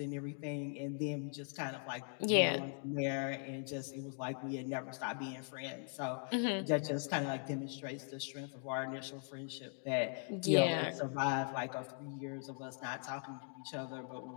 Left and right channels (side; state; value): right; silent; 51 dB below the other